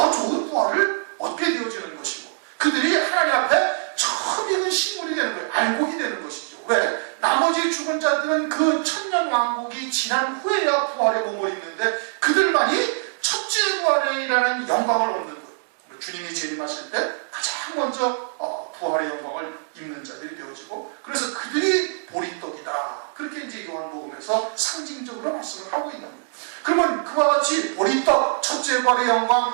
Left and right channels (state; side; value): silent; left; 63 dB below the other